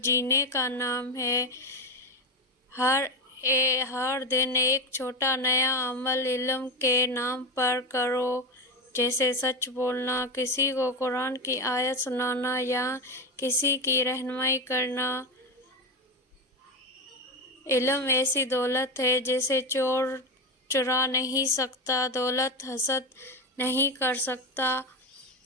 جینے کا نام ہے۔ ہر دن ایک چھوٹا نیا عمل علم کے نام پر کرو، جیسے سچ بولنا، کسی کو قرآن کی آیت سنانا یا کسی کی رہنمائی کرنا۔ علم ایسی دولت ہے جسے چور چرا نہیں سکتا، دولت حسد نہیں کر سکتا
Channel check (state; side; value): normal; both; correlation 0.17